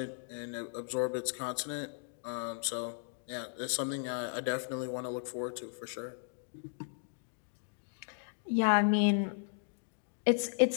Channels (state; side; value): silent; right; digital silence